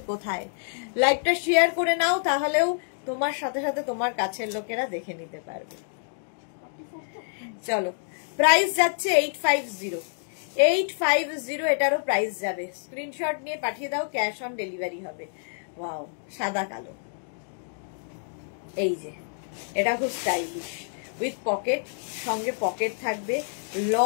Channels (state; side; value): silent; right; digital silence